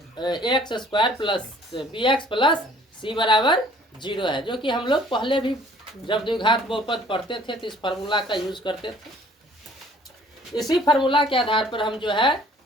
A X square plus B X plus C बराबर 0 है, जो कि हम लोग पहले भी जब द्विघात बहुपद पढ़ते थे तो इस फार्मूला का यूज करते थे। इसी फार्मूला के आधार पर हम जो है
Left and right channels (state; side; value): normal; both; correlation 0.55